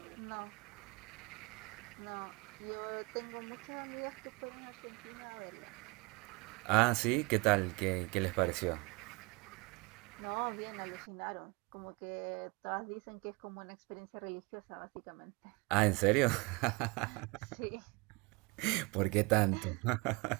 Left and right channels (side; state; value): left; quieter; 27.4 dB